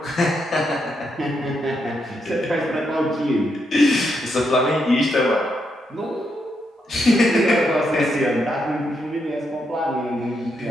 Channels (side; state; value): both; normal; correlation 0.80